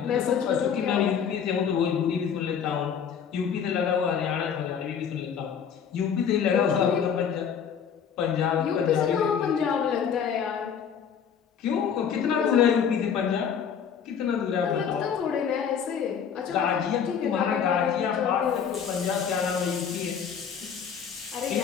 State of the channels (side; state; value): right; quieter; 7.5 dB